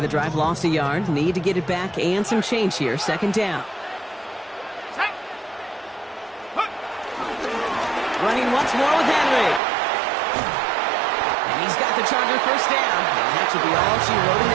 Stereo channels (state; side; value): drops out; left; at 9.6 s